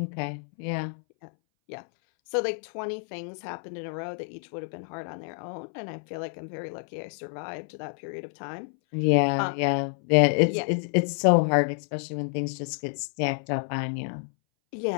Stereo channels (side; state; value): right; silent; 59 dB below the other